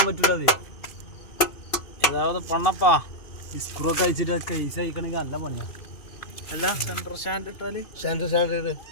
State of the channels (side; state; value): right; late; 2.5 ms